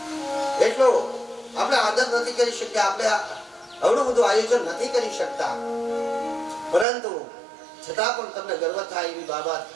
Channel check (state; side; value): drops out; left; at 6.9 s